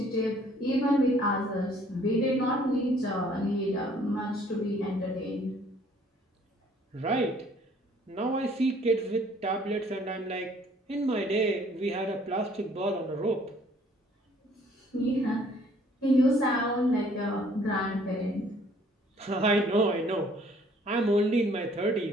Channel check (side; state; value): both; normal; correlation 0.59